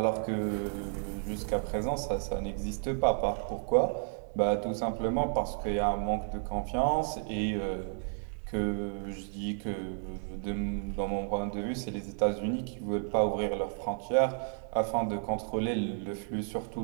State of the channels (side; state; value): left; silent; 56 dB below the other